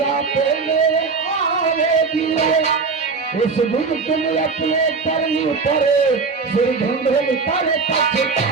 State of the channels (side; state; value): left; quieter; 4.7 dB